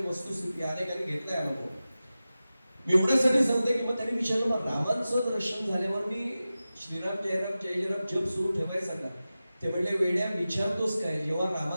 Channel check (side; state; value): both; inverted; correlation -0.95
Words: वस्तुस्थिती अनेकांनी घेतलाय अनुभव. मी एवढ्यासाठी सांगते की मग त्यांनी विचारलं मग रामांचं दर्शन झाल्यावर मी श्रीराम जयराम जय जयराम जप सुरू ठेवायचा का? ते म्हणले वेड्या विचारतोस काय, जेव्हा